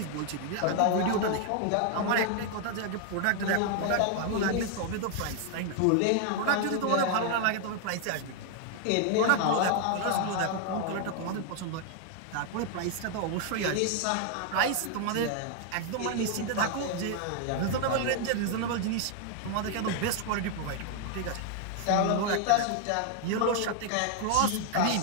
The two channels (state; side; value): different; both; correlation 0.00